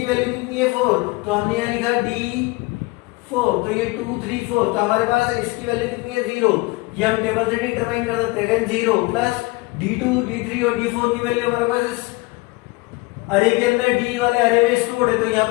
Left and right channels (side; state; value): right; quieter; 23.4 dB